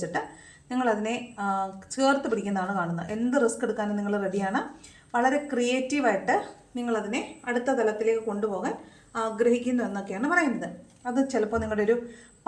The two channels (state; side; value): identical; both; correlation 1.00